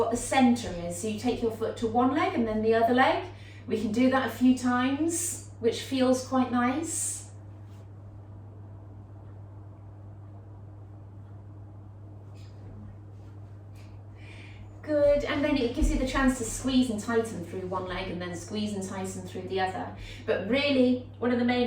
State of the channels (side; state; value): both; identical; correlation 1.00